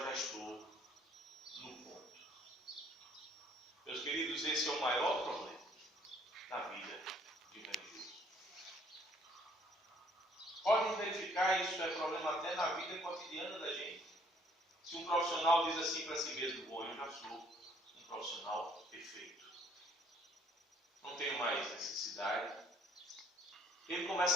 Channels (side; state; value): both; normal; correlation 0.62